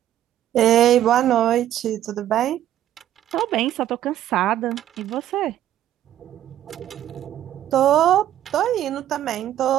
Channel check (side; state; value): left; quieter; 11.9 dB